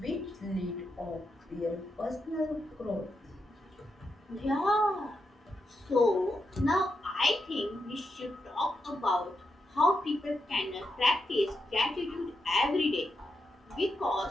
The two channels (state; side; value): normal; both; correlation 0.84